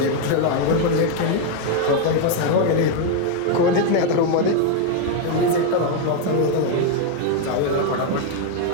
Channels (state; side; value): different; both; correlation 0.01